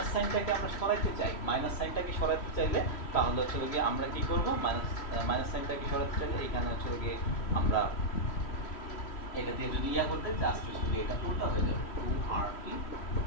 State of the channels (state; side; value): late; right; 3.1 ms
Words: সাইনটাকে আমরা সরাইতে চাই, মাইনাস সাইনটাকে সরাইতে চাইলে তাহলে হচ্ছে গিয়ে আমরা কি করব, মাইনাস সাইনটাকে সরাইতে চাইলে এখানে হচ্ছে গিয়ে আমরা এটা দিয়ে যদি করতে জাস্ট হচ্ছে এটা উল্টা হয়ে যাবে 2RT